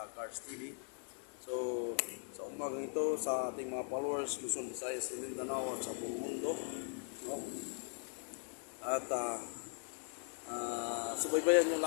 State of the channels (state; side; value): silent; right; 51 dB below the other